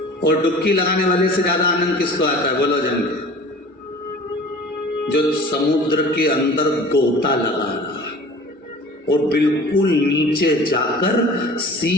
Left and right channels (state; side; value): normal; both; correlation 0.43